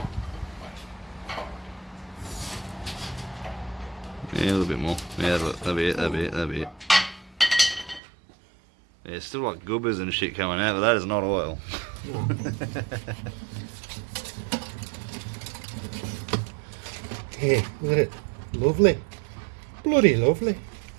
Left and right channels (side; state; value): left; drops out; at 8.0 s